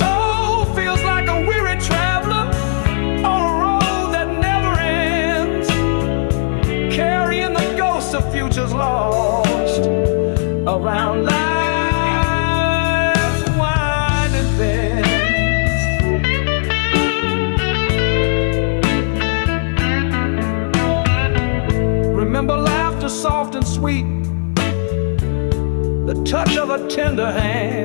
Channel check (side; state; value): right; silent; 56 dB below the other